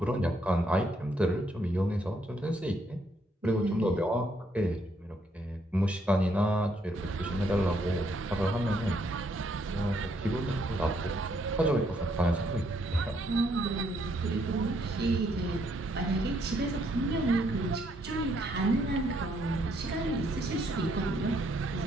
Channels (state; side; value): normal; both; correlation 0.72